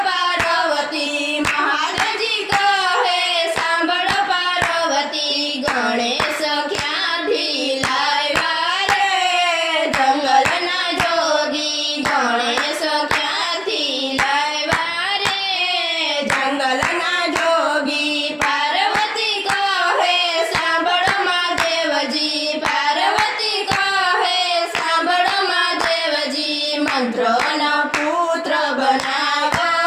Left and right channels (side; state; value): both; identical; correlation 1.00